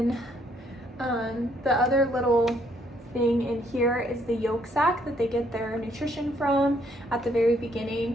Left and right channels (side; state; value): both; normal; correlation 0.68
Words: the other little thing in here is the yolk sac that they get their nutrition from at the very